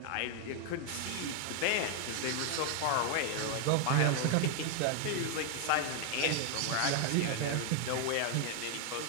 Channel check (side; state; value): both; different; correlation 0.00